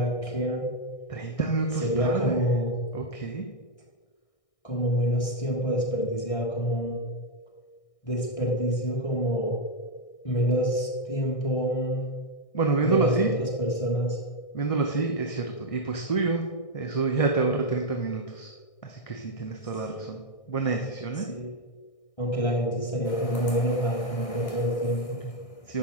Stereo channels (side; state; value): right; late; 1.6 ms